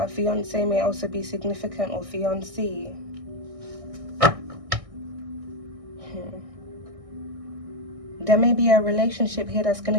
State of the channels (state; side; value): late; left; 1.6 ms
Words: a fiancé may also be significant, or fiancée. there may be a relationship here that's going